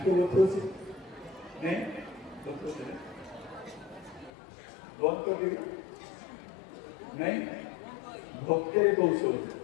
बतोसी नहीं बतोसी बंद कर दी नहीं भक्ति रे कौशल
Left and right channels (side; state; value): right; drops out; at 4.3 s